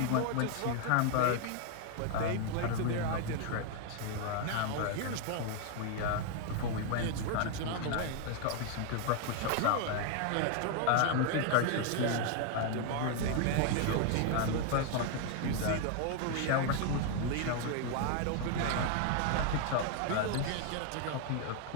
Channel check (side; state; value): both; different; correlation 0.00